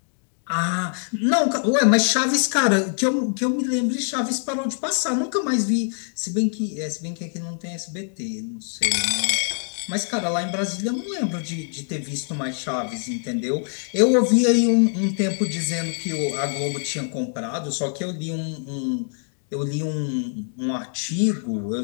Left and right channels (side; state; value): right; silent; 61 dB below the other